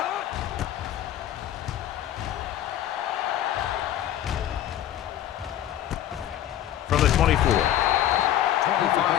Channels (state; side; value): quieter; right; 11.8 dB